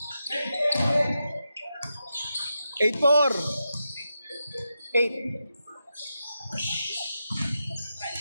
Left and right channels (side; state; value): both; inverted; correlation -0.88